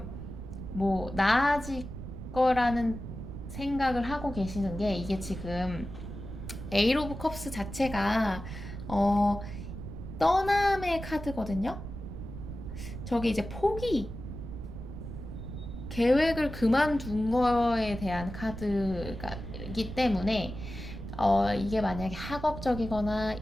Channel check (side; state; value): right; noise; rumble, 9 dB below the sound